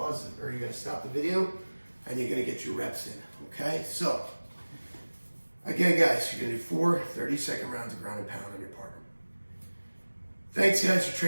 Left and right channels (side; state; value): both; inverted; correlation -1.00